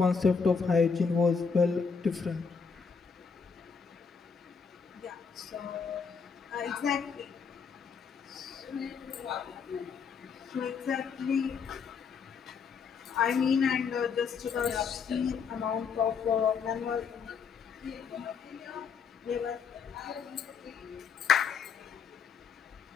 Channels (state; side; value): quieter; right; 5.9 dB